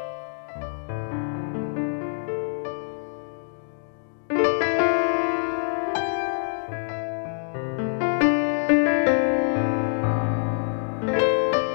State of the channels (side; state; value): right; silent; digital silence